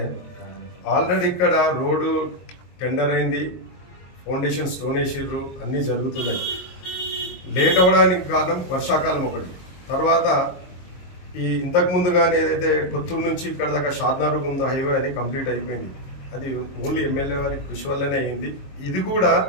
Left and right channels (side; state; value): right; late; 22 ms